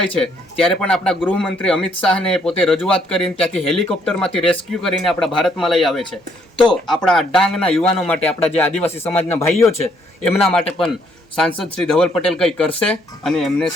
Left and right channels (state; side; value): normal; both; correlation 0.69